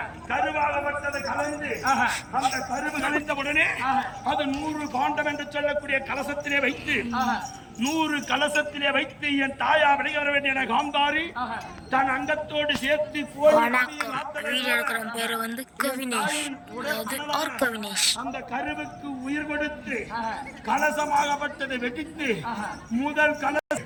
கருவாகப்பட்டது கலந்து அந்த கருவு கழிந்த உடனே அது 100 பாண்டம் என்று சொல்லக்கூடிய கலசத்திலே வைத்து 100 கலசத்திலே வைத்து என் தாயா விளைய வர வேண்டிய காந்தாரி தன் அங்கத்தோடு சேர்த்து அந்த கருவுக்கு உயிர் கொடுத்து கலசமாகப்பட்டதை வெடித்து முதல் கலசம்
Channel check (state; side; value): identical; both; correlation 1.00